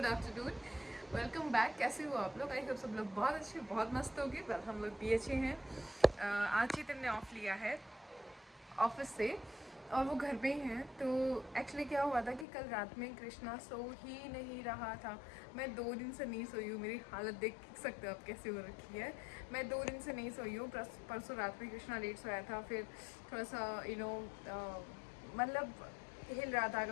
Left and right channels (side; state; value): right; drops out; at 12.5 s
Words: afternoon. Welcome back. कैसे हो आप लोग? आई होप सब लोग बहुत अच्छे बहुत मस्त होंगे। वेल हम लोग भी अच्छे हैं। आज चेतन ने ऑफ लिया है ऑफिस से और वो घर पे ही हैं। तो एक्चुअली क्या हुआ था कि कल रात में कृष्णा सो ही नहीं रहा था। मैं 2 दिन से नहीं सोई हूँ। मेरी हालत देख सकते हो आप कैसे हो रखी है। मैं 2 दिन से नहीं सोई हूँ। परसों रात में कृष्णा लेट सोया था, फिर थोड़ा सा मतलब हिल रहा था